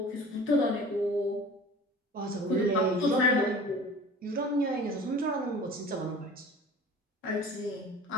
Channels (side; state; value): both; normal; correlation 0.43